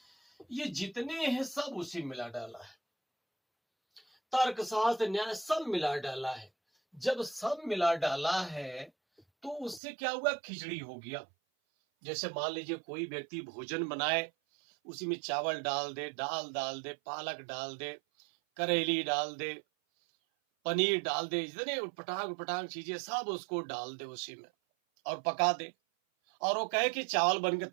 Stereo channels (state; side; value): drops out; left; at 9.8 s